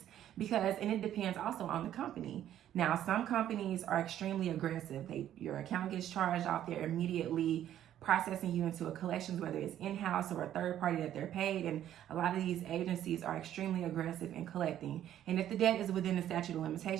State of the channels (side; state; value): left; quieter; 11.4 dB